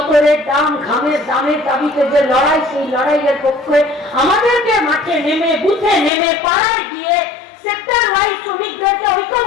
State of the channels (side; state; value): right; drops out; at 6.1 s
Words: দাম, ঘামের দামের দাবিতে যে লড়াই, সেই লড়াইয়ের পক্ষে আমাদেরকে মাঠে নেমে, বুথে নেমে, পাড়ায় গিয়ে সেক্টর ওয়াইজ শ্রমিকদেরকে